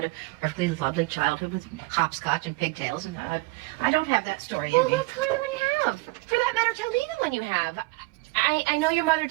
a perfectly lovely childhood with hopscotch and pigtails, and I don't have that story in Well, me. that's fine when you have. For that matter, tell me the one you have. I know your mother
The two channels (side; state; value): left; quieter; 23.5 dB